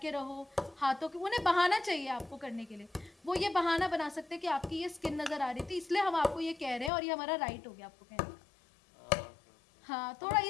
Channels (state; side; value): drops out; right; at 6.9 s